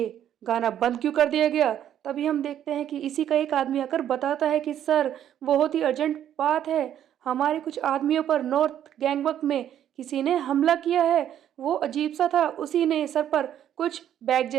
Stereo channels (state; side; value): quieter; left; 10.5 dB